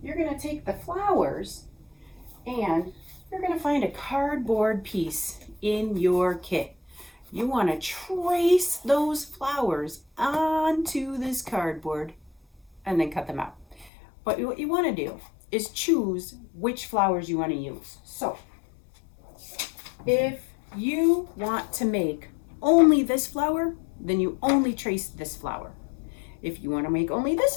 you're going to take the flowers and you're going to find a cardboard piece in your kit. You want to trace those flowers onto this cardboard and then cut them out. But what you want to do is choose which flowers you want to use. So if you want to make only this flower, then you only trace this flower. If you want to make only this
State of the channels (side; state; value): right; drops out; at 13.9 s